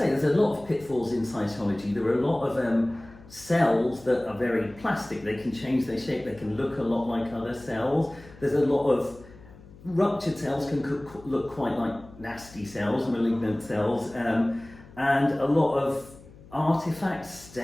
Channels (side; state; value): left; noise; hum, 21 dB below the sound